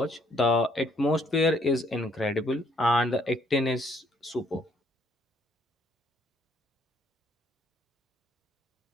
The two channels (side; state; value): both; normal; correlation 0.66